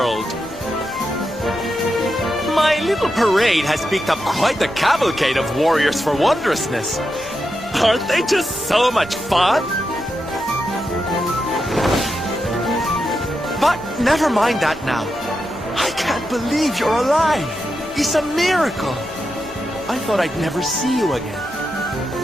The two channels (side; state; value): both; normal; correlation 0.87